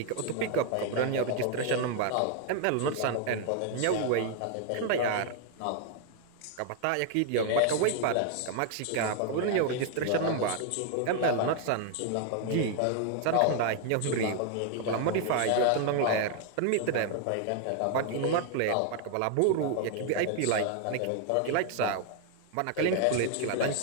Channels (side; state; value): both; different; correlation 0.00